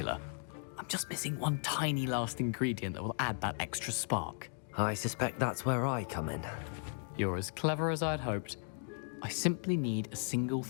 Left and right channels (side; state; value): right; silent; 54 dB below the other